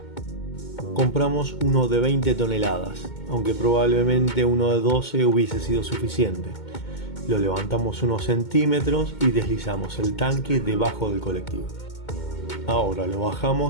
Compramos uno de 20 toneladas, aunque probablemente uno de 12 hubiese sido suficiente. Lo levantamos unos centímetros y deslizamos el tanque debajo del colectivo. Ahora lo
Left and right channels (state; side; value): late; right; 2.2 ms